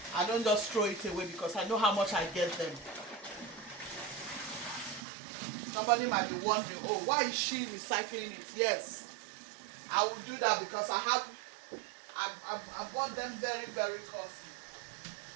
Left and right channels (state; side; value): drops out; left; at 5.0 s